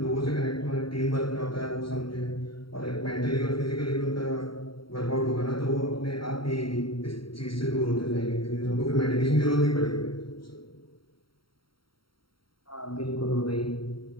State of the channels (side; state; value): right; late; 0.74 ms